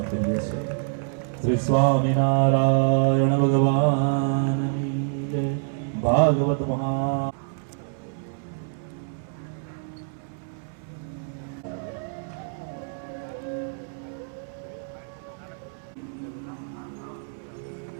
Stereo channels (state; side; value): silent; left; 61 dB below the other